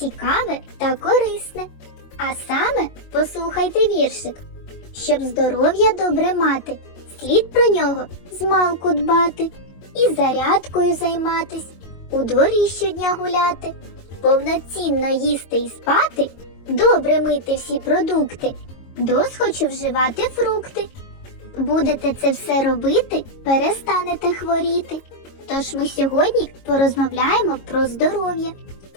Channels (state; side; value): late; right; 22 ms